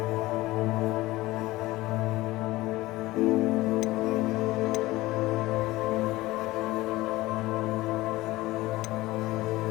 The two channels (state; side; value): quieter; right; 18.7 dB